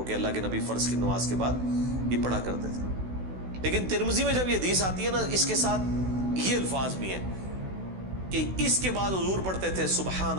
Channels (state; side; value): late; left; 16 ms